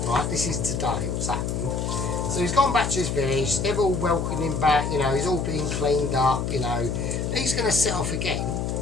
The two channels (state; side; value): noise; left; hum, 2 dB below the sound